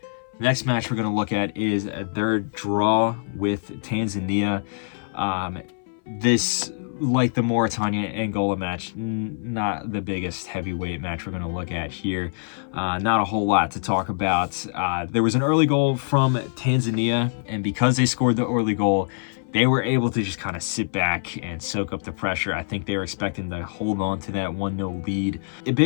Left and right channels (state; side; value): silent; right; 60 dB below the other